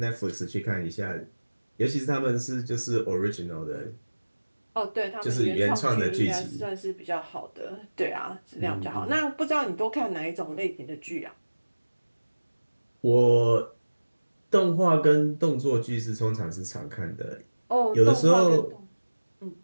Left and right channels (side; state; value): both; inverted; correlation -1.00